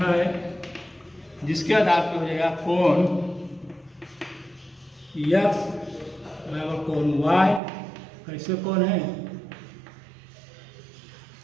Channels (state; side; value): drops out; left; at 7.6 s